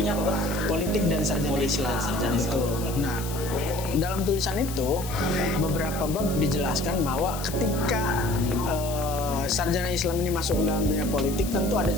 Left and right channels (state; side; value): noise; left; hiss, 11 dB below the sound